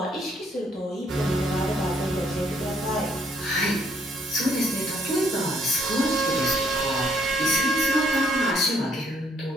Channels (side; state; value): both; normal; correlation 0.68